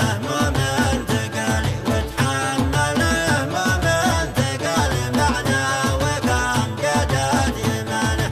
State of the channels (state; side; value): identical; both; correlation 1.00